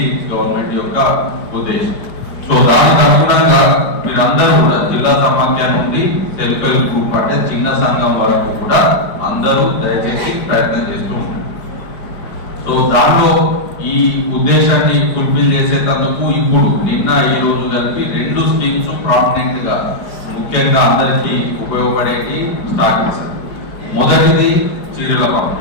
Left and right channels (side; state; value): right; late; 5.1 ms